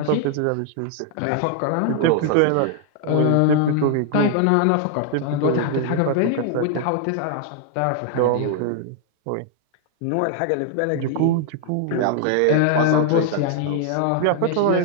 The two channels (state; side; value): different; both; correlation 0.00